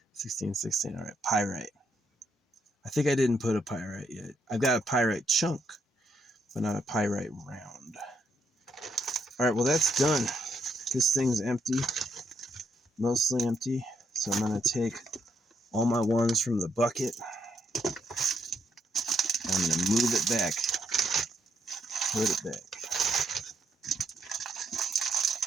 16, 16. All right, pyrite. I think I didn't put a pyrite yet. I've got a pyrite chunk, but not a pyrite round. All right, well, that's done. This thing's empty, mostly empty. So I'm going to take all my ones from the bucket, and I'm going to move it back, put it back.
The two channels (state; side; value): normal; both; correlation 0.76